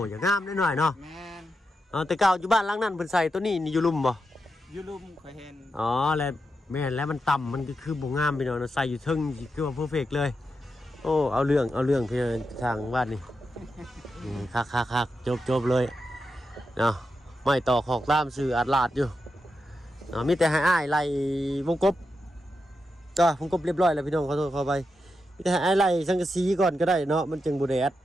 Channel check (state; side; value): normal; both; correlation 0.87